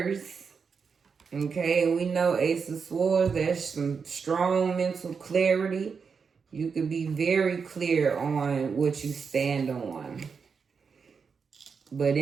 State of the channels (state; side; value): quieter; left; 5.7 dB